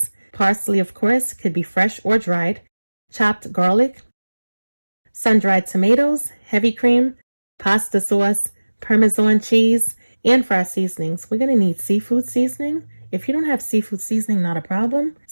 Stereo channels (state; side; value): inverted; both; correlation -1.00